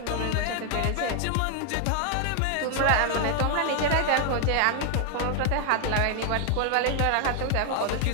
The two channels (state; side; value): different; both; correlation 0.00